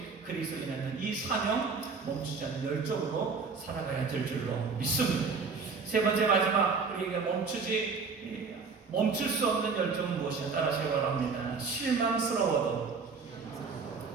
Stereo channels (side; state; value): left; quieter; 4.9 dB